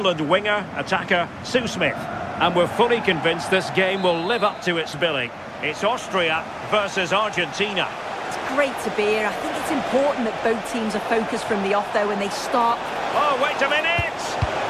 winger, attacker, Sue Smith. And we're fully convinced this game will live up to its billing. It's Austria versus Argentina. Great to be here. I think it's important that both teams are focused from the off though when they start. Oh, wait a minute!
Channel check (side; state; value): both; identical; correlation 1.00